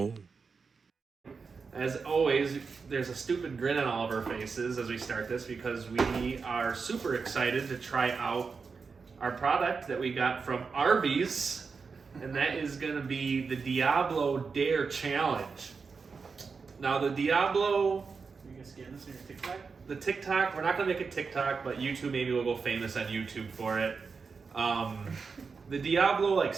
As always, there's a stupid grin on all of our faces as we start this because we are super excited to try out our product that we got from Arby's, and that is going to be the Diablo Dare Challenge. Now, the Diablo, You guys getting this in your TikTok? the TikTok, we're not going to make a TikTok, but YouTube maybe will go famous on YouTube for it. The Diablo like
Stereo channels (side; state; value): left; quieter; 5.1 dB